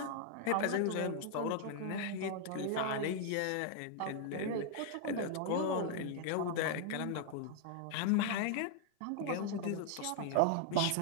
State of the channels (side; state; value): both; different; correlation 0.00